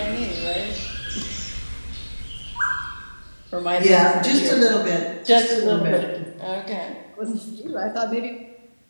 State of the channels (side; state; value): both; inverted; correlation -1.00